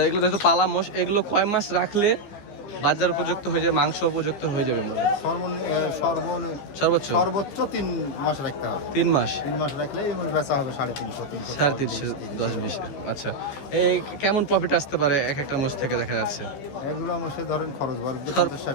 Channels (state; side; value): late; right; 15 ms